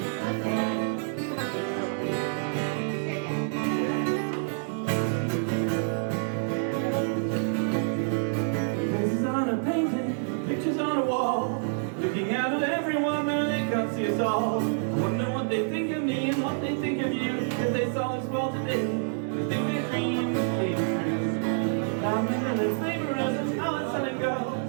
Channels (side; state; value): left; silent; digital silence